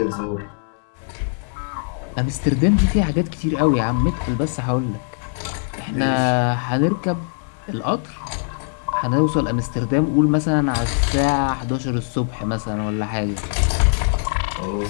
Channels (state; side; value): silent; right; 65 dB below the other